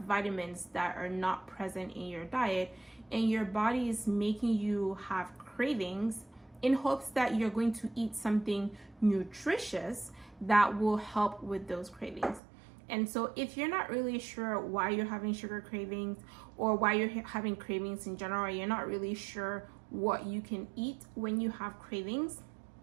vitamins that are not present in your diet, and your body is making you have cravings in hopes that you're going to eat something nutritious that will help with those cravings. And so if you're not really sure why you're having sugar cravings or why you're having cravings in general, or you're not really sure what you can eat when you have cravings,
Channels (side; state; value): left; drops out; at 12.4 s